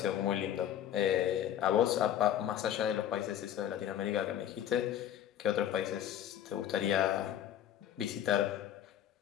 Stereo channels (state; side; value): quieter; right; 10.8 dB